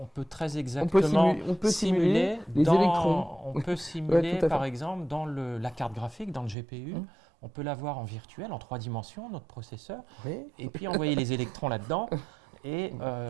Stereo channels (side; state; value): left; drops out; at 6.6 s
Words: très exactement on peut simuler les dans- électrons. On peut simuler, tout à fait. par exemple, dans la carte graphique, dans le GPU, Mhm. on peut l'avoir en virtuel, en 3 dimensions, notre processeur, Oui. et puis envoyer les électrons là-dedans et